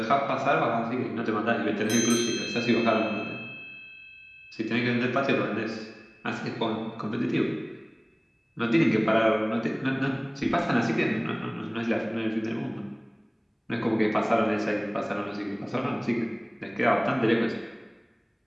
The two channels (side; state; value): both; identical; correlation 1.00